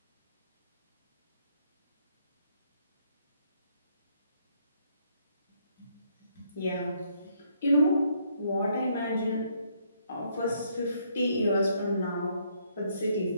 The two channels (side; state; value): both; inverted; correlation -0.70